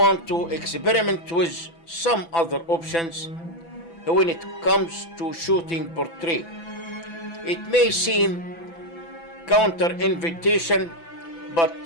to experiment with some other options when it comes to shooting portrait. It may seem counter-invitation, but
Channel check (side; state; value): right; late; 6.0 ms